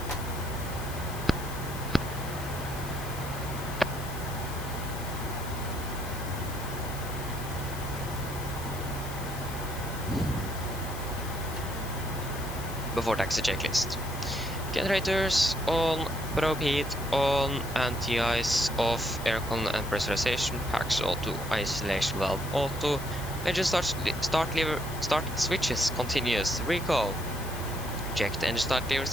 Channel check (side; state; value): left; noise; hiss, 13 dB below the sound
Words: Before taxi checklist. Generators on, probe heat on, anti-ice off, aircon and pressurization, packs auto, isolation valve auto, engine start switches continuous, recall. Checked engine start levers